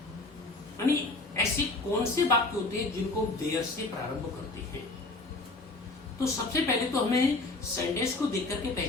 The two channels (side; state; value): right; quieter; 3.2 dB